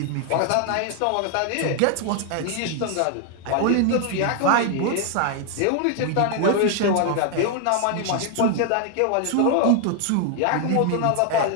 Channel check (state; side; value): different; both; correlation 0.00